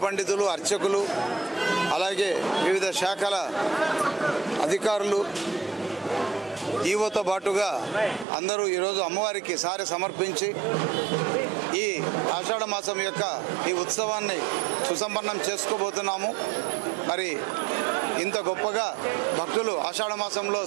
పండితులు, అర్చకులు, అలాగే వివిధ శాఖల అధికారులు, ఈవోతో పాటుగా అందరూ ఈరోజు అమ్మవారికి సారె సమర్పించి ఈ ఆషాఢ మాసం యొక్క ఈ ఉత్సవాన్ని సుసంపన్నం చేసుకోబోతున్నాము. మరి ఇంత గొప్పగా భక్తులు ఆషాఢ మాసంలో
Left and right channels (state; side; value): drops out; left; at 8.2 s